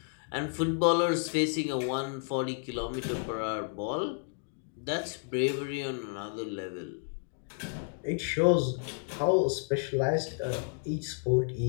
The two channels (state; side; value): silent; right; 57 dB below the other